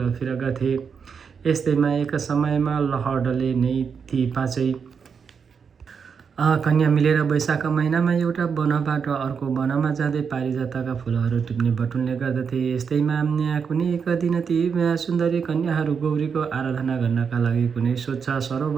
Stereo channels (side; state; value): left; quieter; 6.3 dB